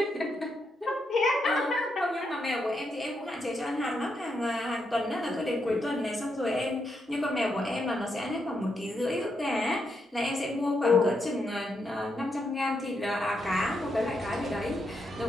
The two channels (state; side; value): normal; both; correlation 0.81